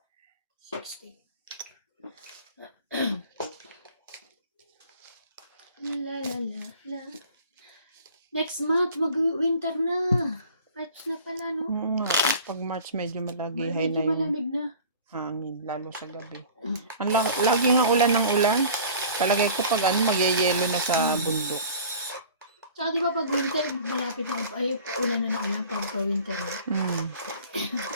60. La la la la. Next month, mag-winter na. March na pala, no? Oo nga, pag March medyo malagihay Medyo na yung malamig na. hangin, lalo sa gabi. Lagi nga ulan ng ulan. Palagay ko pag magyayelo na sa bundok. Tsaka di ba pag winter, malapit na, ay, ulan na ulan pag winter na.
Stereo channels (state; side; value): inverted; both; correlation -0.44